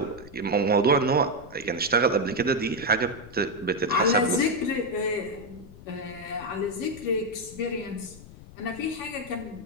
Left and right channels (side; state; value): left; noise; rumble, 18 dB below the sound